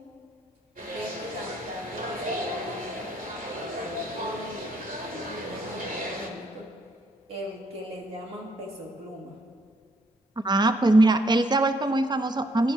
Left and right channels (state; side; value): normal; both; correlation 0.70